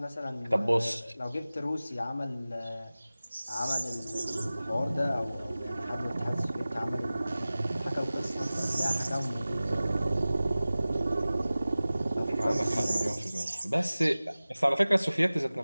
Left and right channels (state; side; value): inverted; both; correlation -0.97